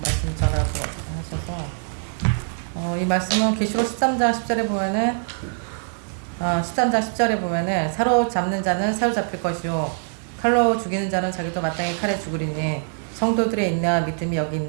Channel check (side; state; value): left; silent; digital silence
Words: 말씀 전하고 하셔서 이 말씀은 계시록 13장 10절에 보면은 13장 10절에 보면은 사로잡는 자는 사로잡힐 것이요 칼로 죽이는 자는 자기도 마땅히 칼에 죽으리니 성도들의 인내와 믿음이 여기